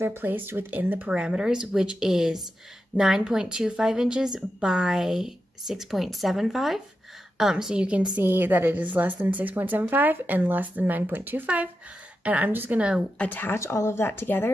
placed within the parameters, which is 9.25 inches by 6.75. So you can see that it is less than 6.75 and less than 9.25. And I'm just going to attach all of that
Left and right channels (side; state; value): both; normal; correlation 0.89